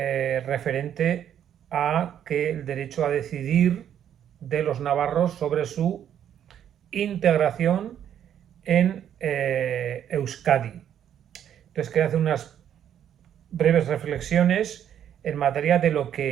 a que el derecho a decidir de los navarros sobre su integración en Euskadi. Entonces quería hacer unas breves reflexiones en materia de lo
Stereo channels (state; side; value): quieter; left; 9.8 dB